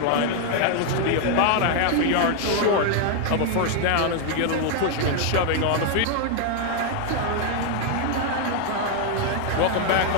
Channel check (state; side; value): different; both; correlation 0.00